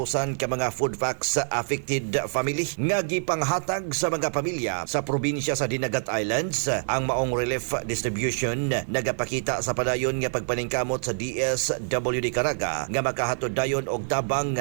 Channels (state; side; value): silent; left; digital silence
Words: ka mga food packs sa affected family nga gipanghatag sa mga pamilya sa probinsya sa Dinagat Islands. Ang maong relief distribution nagapakita sa padayon nga pagpaningkamot sa DSWD Caraga nga makahatod dayon og tabang